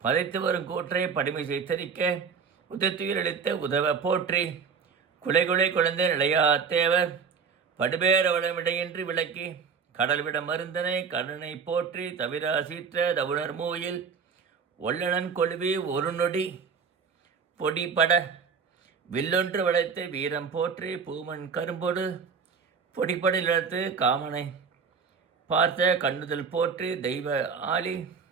பதைத்து வரும் கூற்றை படிமை செய்தரிக்க, உதத்துயிரளித்த உதவ போற்றி, குலைகுலை குழந்தை நிலையா தேவர் படுபேர வளமிடையின்றி விளக்கி, கடல்விட மருந்தனை கருணை போற்றி தவிரா சீற்ற தவுணர் மூயில், ஒல்லனன் கொழுவி ஒரு நொடி பொடிபட வில்லொன்று வளைத்து வீரம் போற்றி, பூமன் கரும்பொடு பொடிப்படி இழத்து காமனை பார்த்த கண்ணுதல் போற்றி, தெய்வ ஆளி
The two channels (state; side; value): quieter; left; 5.9 dB